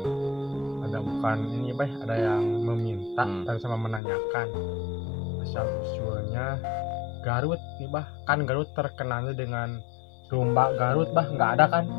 ada bukan ini Bah, ada yang meminta dan sama menanyakan asal usulnya Garut nih Bah. Kan Garut terkenalnya dengan domba Garut Bah, nggak ada kan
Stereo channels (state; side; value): drops out; right; at 4.0 s